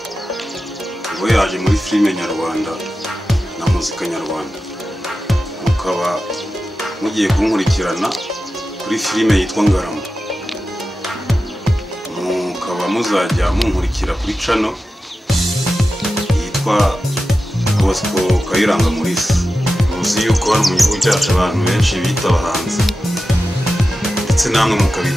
ubwo yaje muri filime nyarwanda na muzika nyarwanda, mukaba mugiye kunkurikirana kuri filime yitwa Ngarama, mukaba muzajya munkurikira kuri channel yitwa Bosco Kayiranga Maurice. Muzi yuko hano mu gihugu cyacu abantu benshi bita abahanzi ndetse namwe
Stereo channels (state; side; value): normal; both; correlation 0.92